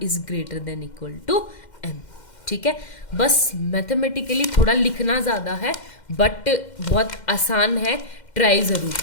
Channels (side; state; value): right; late; 2.1 ms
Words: is greater than equal to m। ठीक है, बस मैथमेटिकली थोड़ा लिखना ज़्यादा है, बट बहुत आसान है, ट्राई ज़रूर